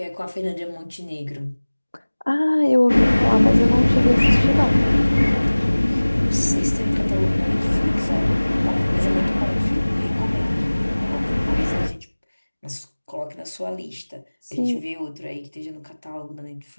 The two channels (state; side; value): inverted; both; correlation -1.00